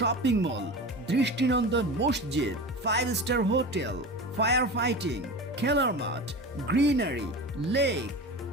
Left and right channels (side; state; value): both; normal; correlation 0.30